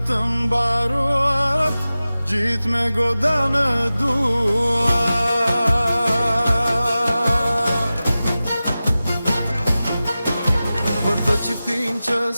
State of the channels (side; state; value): both; inverted; correlation -0.95